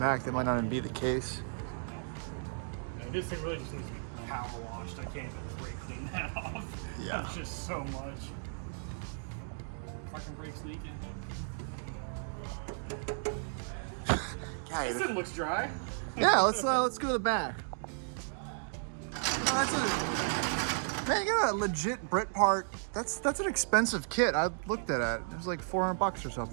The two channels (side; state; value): left; silent; digital silence